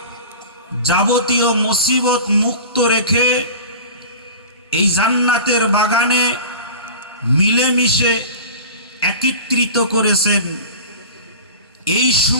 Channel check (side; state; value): both; inverted; correlation -0.36